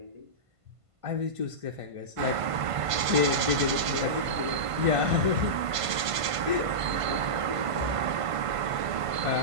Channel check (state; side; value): late; left; 1.5 ms